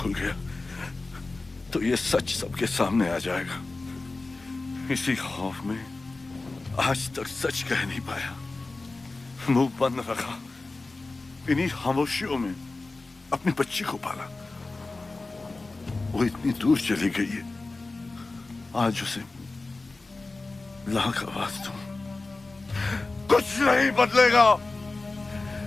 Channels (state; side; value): quieter; right; 3.4 dB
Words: गया तो ये सच सबके सामने आ जाएगा। इसी खौफ में आज तक सच कह नहीं पाया, मुंह बंद रखा। इन्हीं खामोशियों में अपनी बच्ची को पाला। वो इतनी दूर चली गई है, आज उसे लाख आवाज दूं, कुछ नहीं बदलेगा।